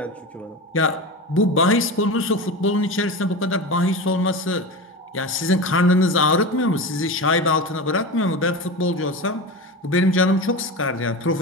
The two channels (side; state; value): both; normal; correlation 0.25